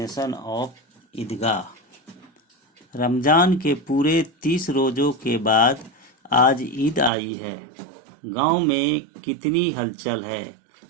of ईदगाह। रमज़ान के पूरे 30 रोज़ों के बाद आज ईद आई है। गांव में कितनी हलचल है।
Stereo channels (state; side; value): drops out; left; at 7.1 s